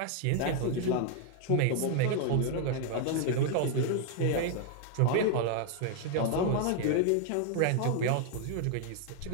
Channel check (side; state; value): both; different; correlation 0.00